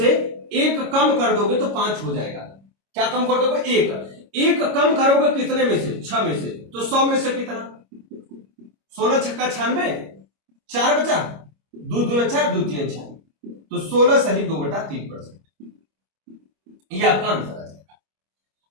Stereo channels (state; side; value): late; left; 25 ms